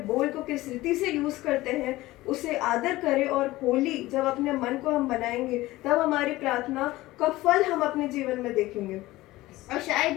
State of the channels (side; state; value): right; quieter; 18.0 dB